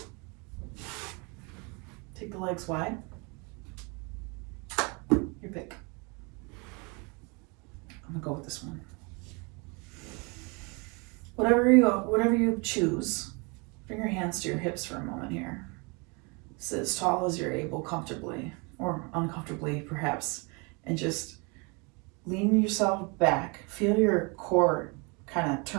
take the legs wide. Your pick. I'm gonna go with this one. Whatever you choose, bring your hands to your hips for a moment here. Sit as tall as you're able comfortably, or uncomfortably perhaps, and just lean yourself back. Feel your core kind of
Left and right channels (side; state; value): left; quieter; 30.7 dB